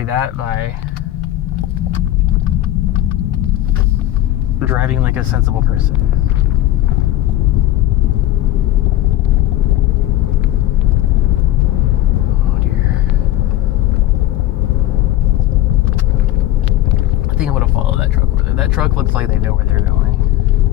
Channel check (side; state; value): right; quieter; 14.1 dB